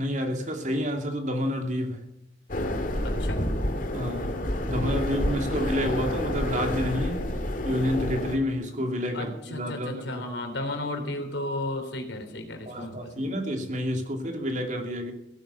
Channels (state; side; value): normal; both; correlation 0.62